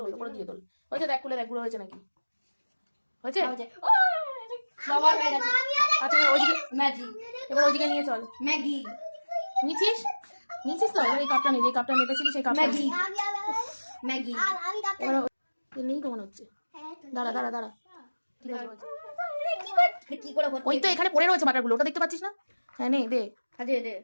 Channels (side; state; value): both; inverted; correlation -1.00